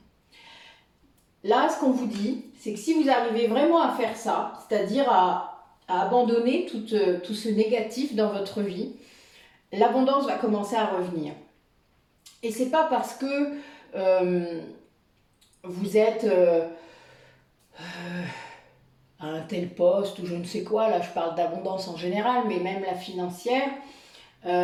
Là, ce qu'on vous dit, c'est que si vous arrivez vraiment à faire ça, c'est-à-dire à abandonner tout ce négatif dans votre vie, l'abondance va commencer à revenir. Et c'est pas parce que vous êtes à un tel poste ou je ne sais quoi, là je parle d'abondance en général, mais même la financière,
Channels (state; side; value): identical; both; correlation 1.00